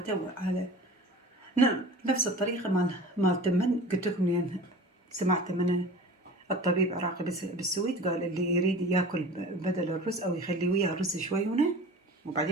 على نفس الطريقة مال تمن. قلت لكم لين سمعت من الطبيب عراقي بالسويد قال اللي يريد ياكل بدل الرز او يخلي وياه رز شوي هنا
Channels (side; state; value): both; normal; correlation 0.39